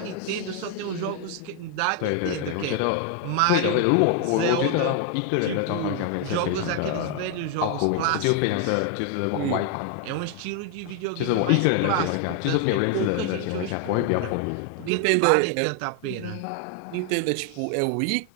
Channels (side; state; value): both; different; correlation 0.00